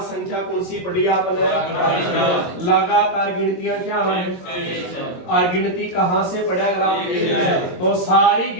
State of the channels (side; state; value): right; late; 22 ms